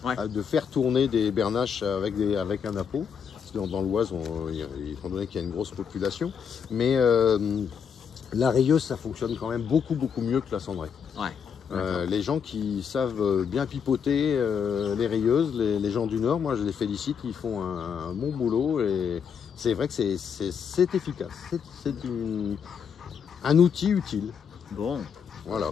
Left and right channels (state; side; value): quieter; right; 7.1 dB